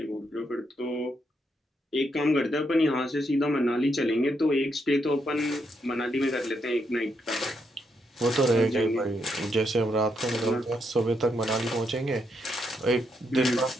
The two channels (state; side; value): normal; both; correlation 0.79